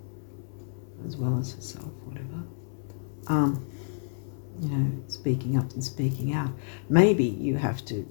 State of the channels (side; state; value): right; silent; 58 dB below the other